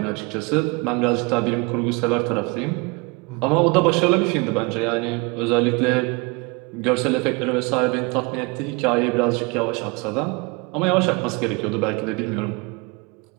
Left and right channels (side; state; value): left; quieter; 28.2 dB